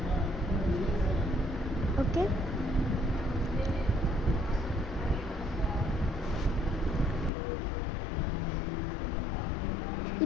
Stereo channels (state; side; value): drops out; right; at 7.3 s